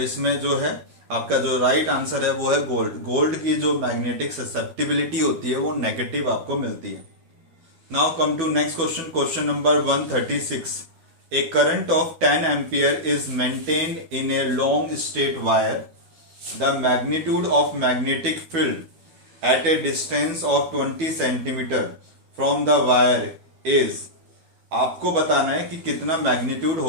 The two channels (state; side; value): late; left; 12 ms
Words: इसमें जो है आपका जो राइट आंसर है वो है गोल्ड। गोल्ड की जो मैग्नेटिक ससेप्टिबिलिटी होती है वो नेगेटिव आपको मिलती है। Now come to next question, question number 136। A current of 10 ampere is maintained in a long straight wire. The magnitude of magnetic field at a distance of 20 centimeter from the wire is, आपको बताना है कि कितना magnitude